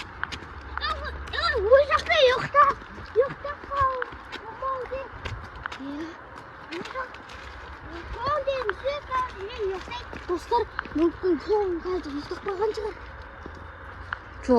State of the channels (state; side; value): identical; both; correlation 1.00